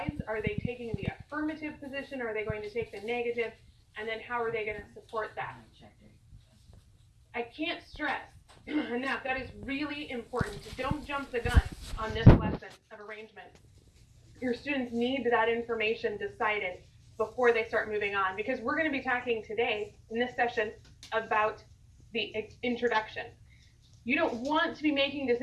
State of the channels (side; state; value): both; identical; correlation 1.00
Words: Are they taking the affirmative position? Are they going to take the negative? And then how are they going to support that? I can't stress enough, that is really important. Don't jump the gun on this lesson of arrangement. Your students need that information decided before they start moving on, because we're going to be talking today in this session about the introduction. You don't want to be making